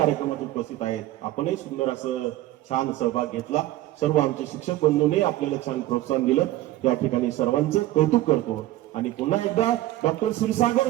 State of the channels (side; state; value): left; quieter; 15.5 dB